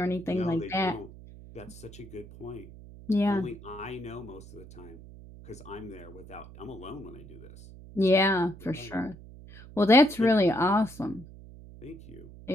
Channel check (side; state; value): right; noise; hum, 17 dB below the sound